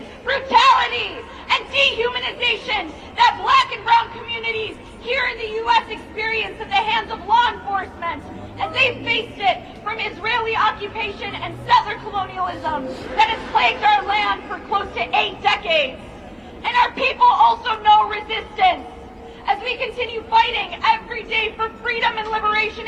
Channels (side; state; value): both; identical; correlation 1.00